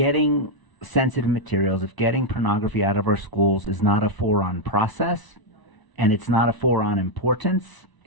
sensitive materials, if getting pornography out of our schools is not a 4 on process, and it's not a 4 on importance,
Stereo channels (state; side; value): late; right; 1.0 ms